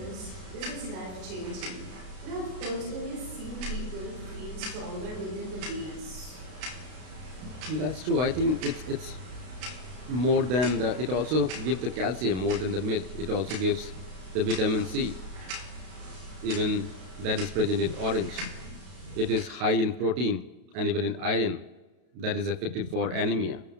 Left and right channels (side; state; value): left; late; 32 ms